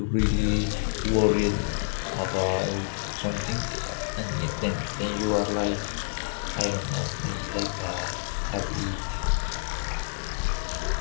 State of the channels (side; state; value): right; silent; digital silence